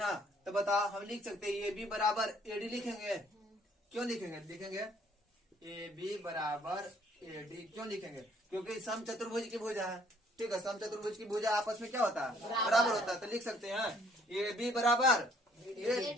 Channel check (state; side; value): normal; both; correlation 0.62